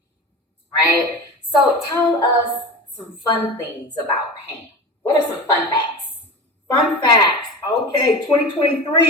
right? So tell us some fun things about Pam. What are some fun facts? Fun facts. Okay,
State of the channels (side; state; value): both; normal; correlation 0.29